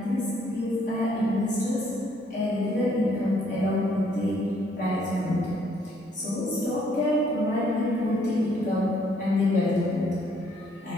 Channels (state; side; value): normal; both; correlation 0.66